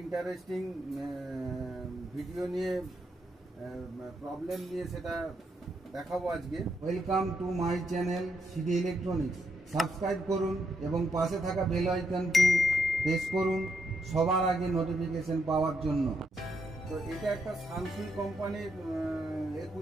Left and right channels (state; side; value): normal; both; correlation 0.78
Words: interesting video নিয়ে প্রবলেম নিয়ে সেটা দেখাবো আজকে। Welcome to my channel CD electronics. Subscribe করুন এবং পাশে থাকা বেল আইকনটি প্রেস করুন সবার আগে নোটিফিকেশন পাওয়ার জন্য। তো এটা একটা সানসুই কোম্পানির